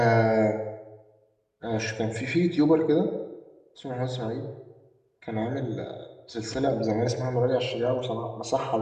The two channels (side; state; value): both; identical; correlation 1.00